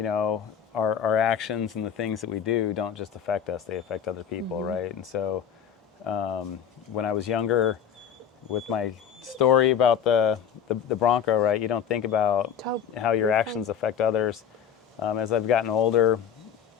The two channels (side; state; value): right; quieter; 8.3 dB